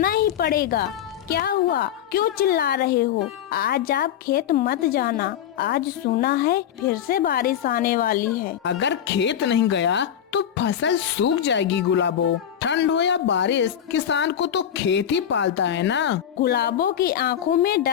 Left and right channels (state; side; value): quieter; right; 9.7 dB